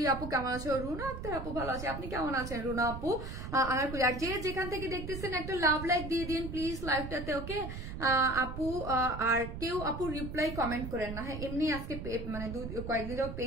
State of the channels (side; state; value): right; noise; rumble, 7 dB below the sound